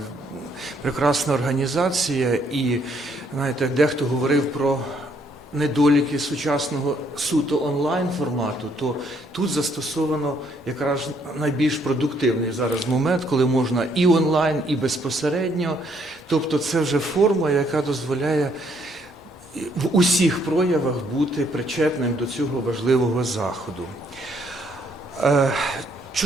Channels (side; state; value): both; normal; correlation 0.69